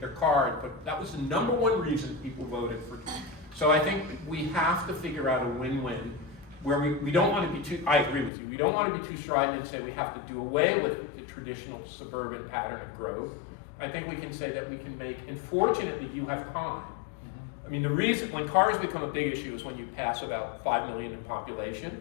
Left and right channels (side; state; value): right; drops out; at 8.3 s